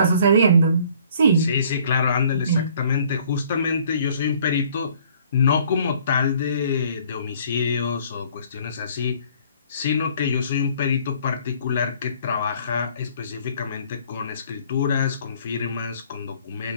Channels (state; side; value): inverted; both; correlation -0.58